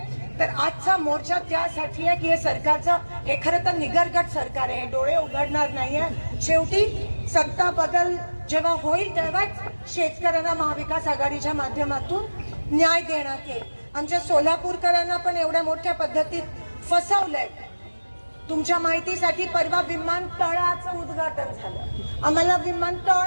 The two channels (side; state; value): both; inverted; correlation -1.00